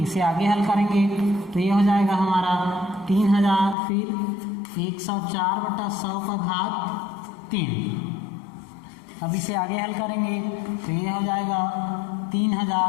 आगे हल करेंगे तो ये हो जाएगा हमारा 3,000, फिर 104/100 का घात 3। अब इसे आगे हल करेंगे तो ये हो जाएगा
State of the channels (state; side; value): drops out; right; at 3.8 s